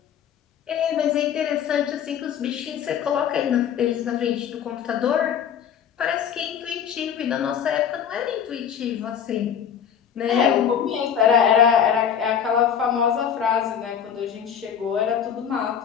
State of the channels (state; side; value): quieter; right; 8.3 dB